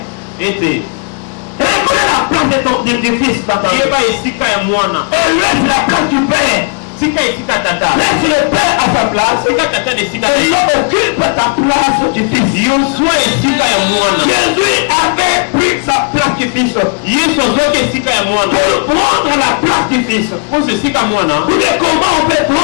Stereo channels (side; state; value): right; quieter; 37.4 dB